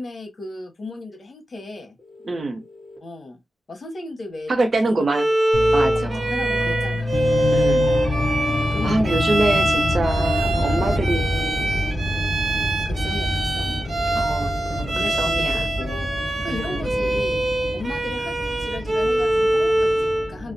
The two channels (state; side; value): normal; both; correlation 0.92